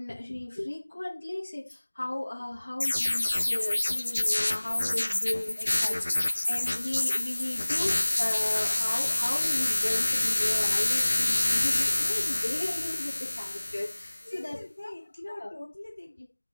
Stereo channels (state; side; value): inverted; both; correlation -1.00